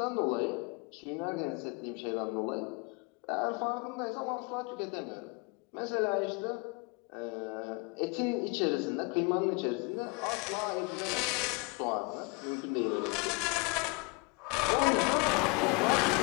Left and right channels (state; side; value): quieter; right; 28.8 dB